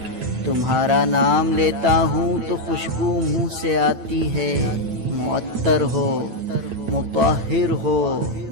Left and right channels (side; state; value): left; late; 9.1 ms